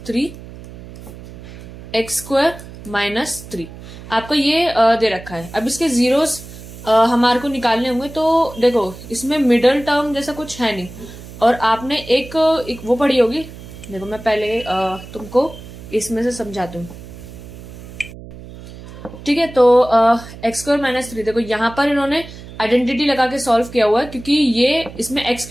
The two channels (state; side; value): noise; right; hum, 15 dB below the sound